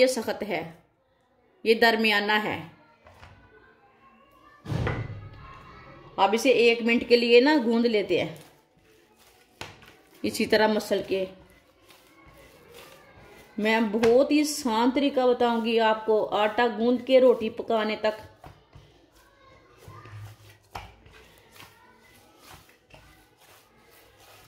सख्त है, ये दरमियाना है। अब इसे 1 मिनट के लिए ना गूंद लेते हैं इसी तरह मसल के। मैं बहुत ही आसान तरीका बताऊंगी आपको आटा गूंद के रोटी पकाने तक।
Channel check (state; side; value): identical; both; correlation 1.00